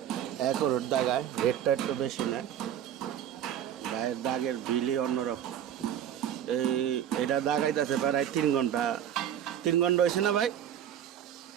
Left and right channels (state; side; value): quieter; left; 10.1 dB